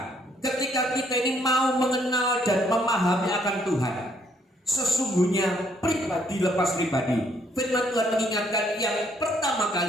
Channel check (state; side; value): normal; both; correlation 0.68